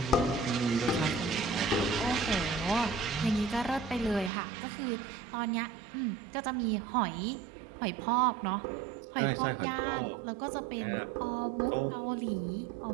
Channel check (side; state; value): left; drops out; at 4.3 s